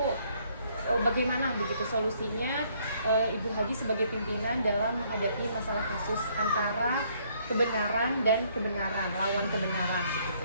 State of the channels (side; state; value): both; inverted; correlation -0.66